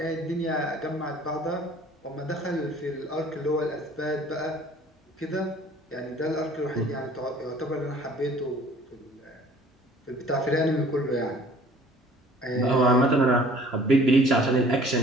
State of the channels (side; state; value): both; normal; correlation 0.51